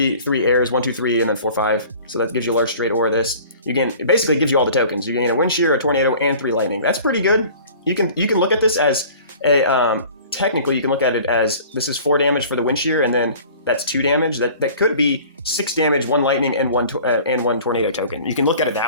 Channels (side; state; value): both; inverted; correlation -0.46